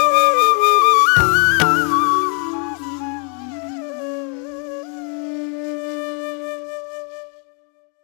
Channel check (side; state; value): right; quieter; 39.8 dB